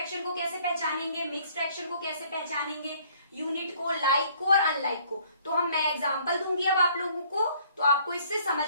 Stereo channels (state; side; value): inverted; both; correlation -0.60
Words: को कैसे पहचानेंगे, मिक्स फ्रैक्शन को कैसे पहचानेंगे, यूनिट को, लाइक को और अनलाइक को। तो मैं एग्जांपल दूंगी अब आप लोगों को, तो आपको इससे